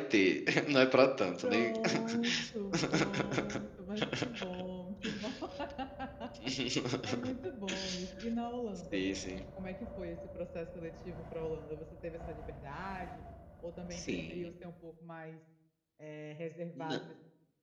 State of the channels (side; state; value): both; identical; correlation 1.00